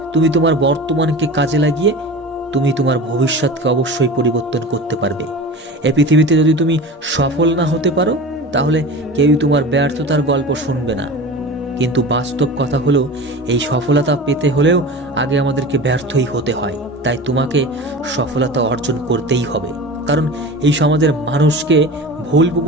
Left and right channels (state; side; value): normal; both; correlation 0.33